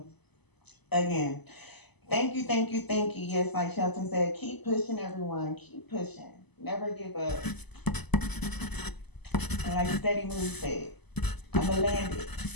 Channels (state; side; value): late; right; 0.99 ms